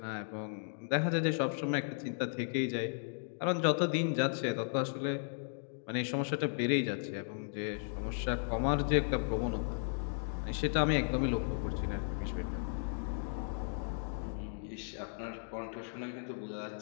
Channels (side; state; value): right; silent; digital silence